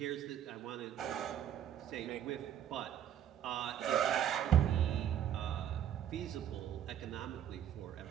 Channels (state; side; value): quieter; left; 10.1 dB